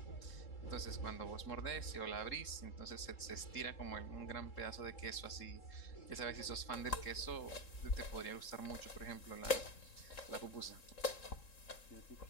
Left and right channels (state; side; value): late; right; 3.7 ms